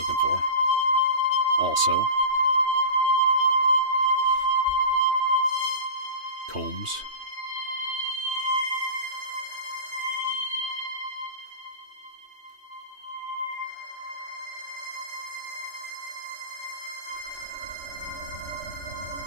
for. Also, combs.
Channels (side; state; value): left; late; 3.2 ms